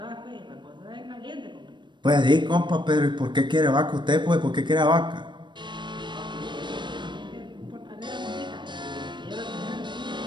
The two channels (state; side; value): late; left; 0.22 ms